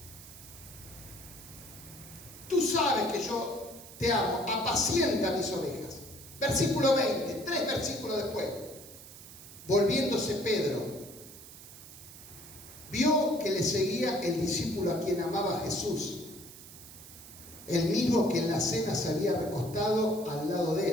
Tú sabes que yo te amo, apacienta mis ovejas. Versículo 20, 3 versículos después. Volviéndose Pedro, vio que le seguía el discípulo a quien amaba Jesús, el mismo que en la cena se había recostado al lado de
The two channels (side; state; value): right; noise; hiss, 16 dB below the sound